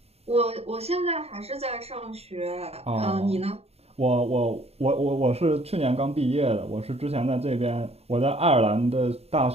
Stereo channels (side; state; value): left; late; 0.30 ms